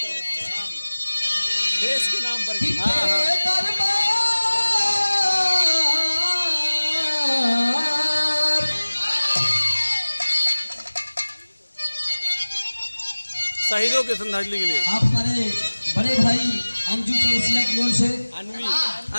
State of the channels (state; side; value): inverted; both; correlation -1.00